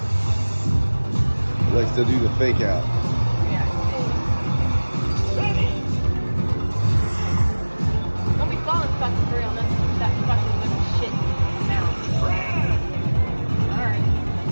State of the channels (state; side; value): inverted; both; correlation -1.00